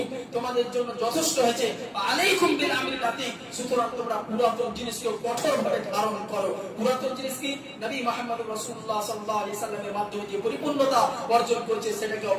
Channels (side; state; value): both; identical; correlation 1.00